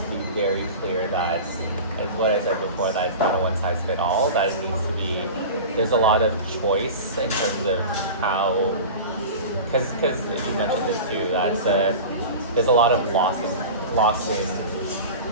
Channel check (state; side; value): inverted; both; correlation -0.32